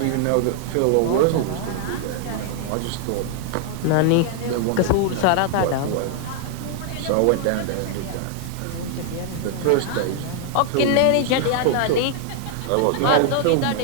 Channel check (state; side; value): different; both; correlation 0.00